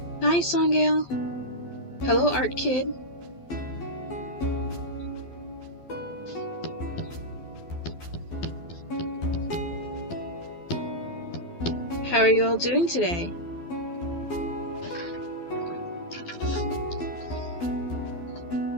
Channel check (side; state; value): right; late; 12 ms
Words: Hi, Songgale. Hello, Art Kid. How are you all doing today?